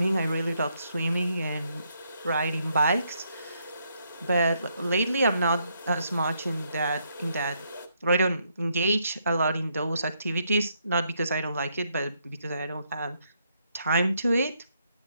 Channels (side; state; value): both; inverted; correlation -0.75